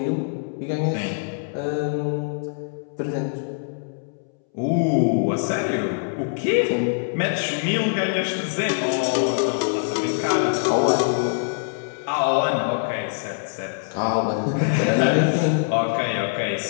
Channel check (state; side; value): silent; right; 63 dB below the other